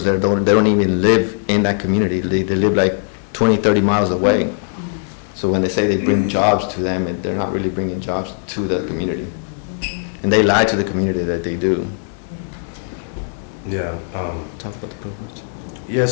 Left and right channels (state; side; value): silent; right; digital silence